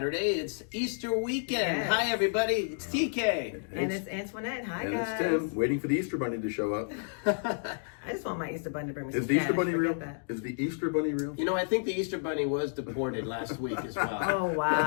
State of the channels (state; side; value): silent; right; digital silence